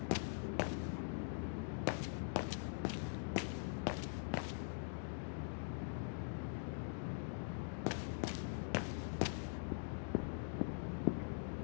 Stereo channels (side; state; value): right; silent; digital silence